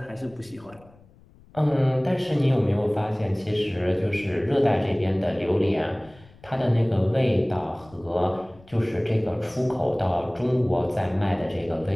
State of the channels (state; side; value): noise; left; rumble, 26 dB below the sound